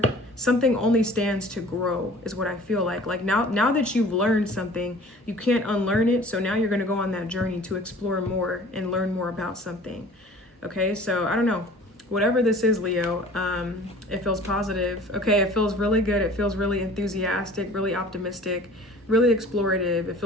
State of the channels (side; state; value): both; normal; correlation 0.47